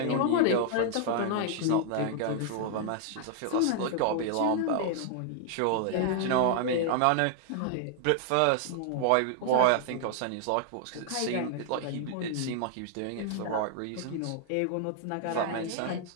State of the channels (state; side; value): different; both; correlation 0.00